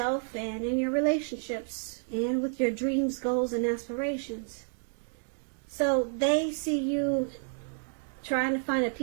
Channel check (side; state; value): left; silent; digital silence